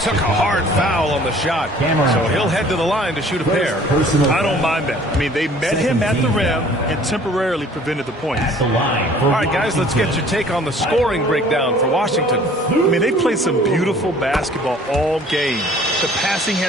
took a hard foul on the shot. So he'll head to the line to shoot a pair. I don't mind that. I mean, they met him at the rim and temporarily prevented the points. All right, guys, let's get your take on the scoring breakdown for Washington. I mean, they played some beautiful basketball all game. The passing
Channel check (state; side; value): normal; both; correlation 0.52